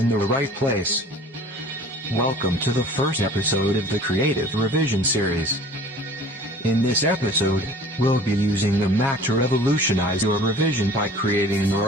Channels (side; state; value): both; normal; correlation 0.45